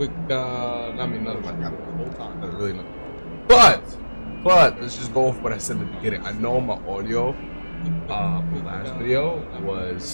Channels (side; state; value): both; inverted; correlation -1.00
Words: nothing about that the whole time. That's really nothing. But, let's just go off what I said in the beginning. I know my audio, for the last video